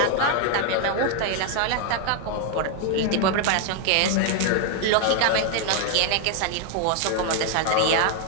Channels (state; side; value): different; both; correlation 0.01